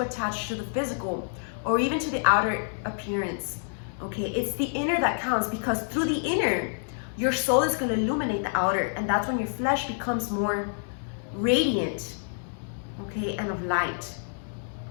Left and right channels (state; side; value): silent; right; digital silence